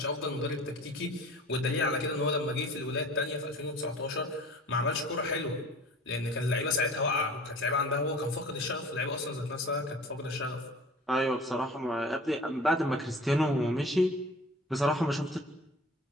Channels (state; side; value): normal; both; correlation 0.43